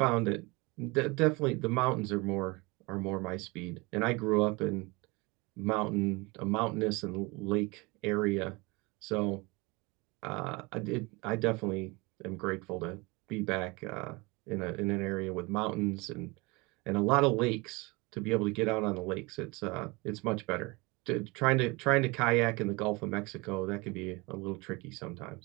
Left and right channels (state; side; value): quieter; left; 25.6 dB